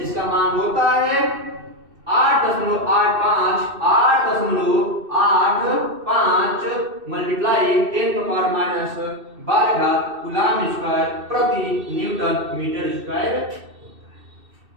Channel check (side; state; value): left; late; 2.6 ms